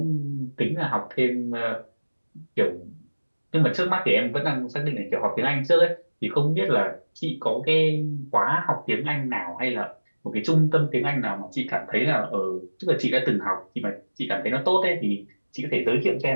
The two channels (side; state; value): both; inverted; correlation -1.00